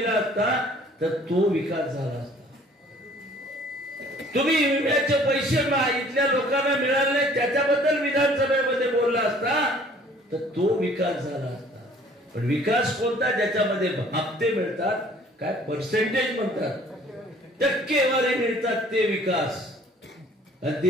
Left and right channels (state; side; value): normal; both; correlation 0.54